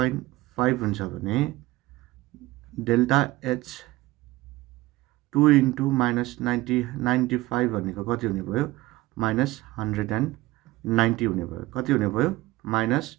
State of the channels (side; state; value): left; quieter; 18.7 dB